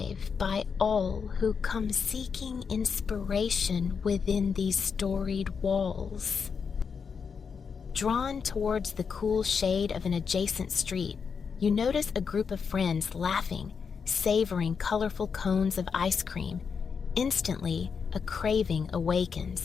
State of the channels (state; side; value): quieter; right; 6.0 dB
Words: by all who come seeking inspiration within these storied walls. Drawn towards the cool shade of an adjacent street, you notice a group of friends laughing, savoring colorful cones of ice cream. Instantly, a craving